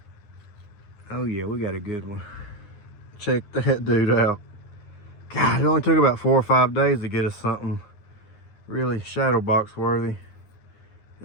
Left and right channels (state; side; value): late; right; 9.6 ms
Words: Oh yeah, we got a good one. Check that dude out. God, it only took about 4 or 5 days to get us something really shadow box worthy.